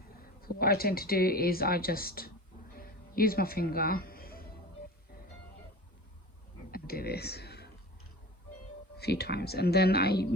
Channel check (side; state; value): both; normal; correlation 0.35